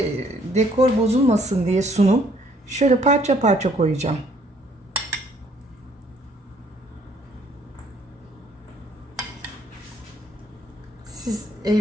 dekor bozulmasın diye sunum şöyle parça parça koyacağım. Siz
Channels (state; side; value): normal; both; correlation 0.63